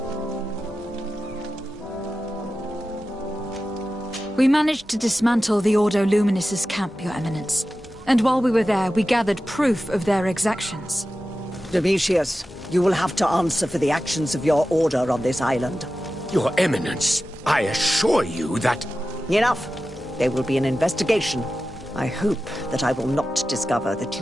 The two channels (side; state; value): both; normal; correlation 0.93